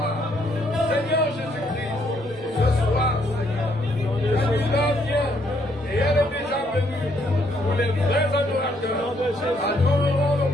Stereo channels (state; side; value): normal; both; correlation 0.70